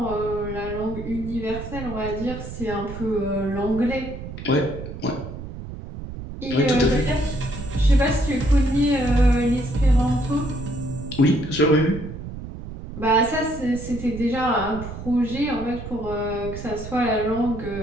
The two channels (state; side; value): noise; right; rumble, 10 dB below the sound